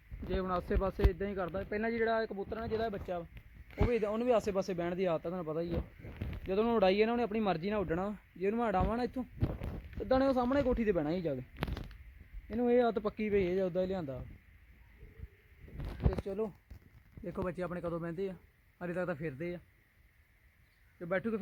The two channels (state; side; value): identical; both; correlation 1.00